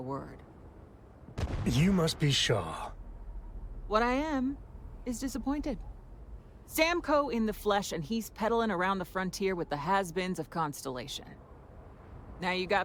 word. You must be Shaw. What I am is disappointed. Samco in the flesh, and he's peddling around the frontier with the has-beens of Constellation. Now you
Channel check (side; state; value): both; identical; correlation 1.00